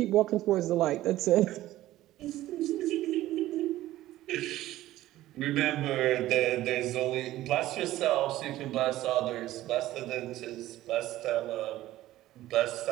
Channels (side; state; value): left; quieter; 15.2 dB